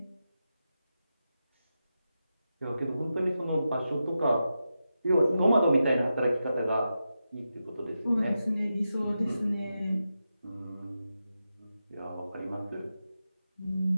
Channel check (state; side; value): inverted; both; correlation -0.89